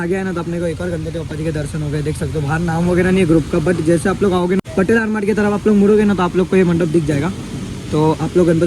गया है ना, तो अपने को एक और गणपति बप्पा जी के दर्शन हो गए। देख सकते हो बाहर नाम वगैरह नहीं है ग्रुप का, बट जैसे आप लोग आओगे ना पटेल आर्मार्ट की तरफ आप लोग मुड़ोगे ना तो आप लोग को ये मंडप दिख जाएगा। तो आप लोग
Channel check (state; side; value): identical; both; correlation 1.00